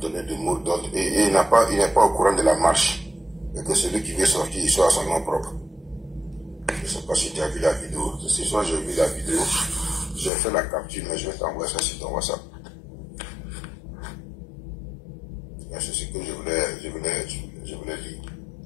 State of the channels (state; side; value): drops out; right; at 10.3 s